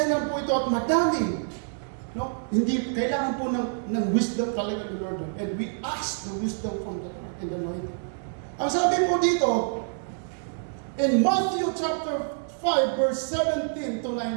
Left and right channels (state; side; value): silent; left; digital silence